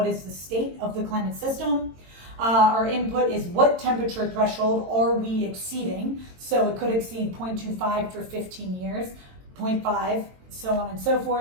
is the state of the climate system? Our input is what temperature threshold are we exceeding, so it could exceed 0.25 for 15 years, 0.5, so on and so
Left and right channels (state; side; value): late; left; 22 ms